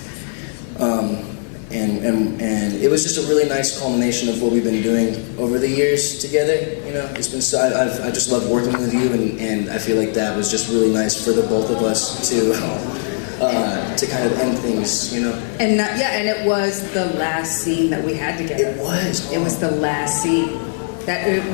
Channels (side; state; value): right; silent; digital silence